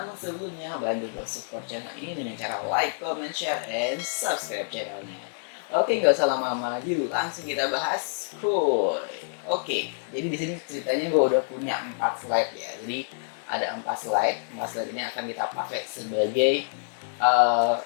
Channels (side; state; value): right; silent; digital silence